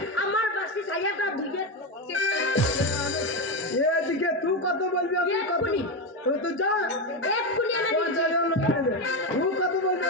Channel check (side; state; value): both; normal; correlation 0.12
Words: আমার বাসি সাইয়াটা ধুইয়ে এদিকে তুই কত বলবি আমি কত এক্ষুনি। তুই যা এক্ষুনি এনে দিচ্ছি। 50,000 লোন নিবি তুই কত বলবি